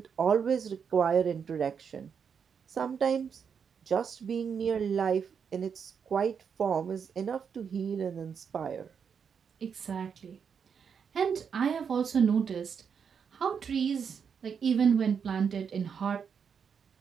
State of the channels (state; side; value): quieter; left; 6.8 dB